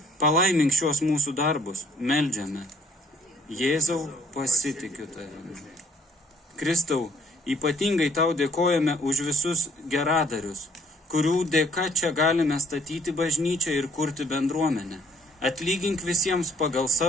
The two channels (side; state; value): both; normal; correlation 0.62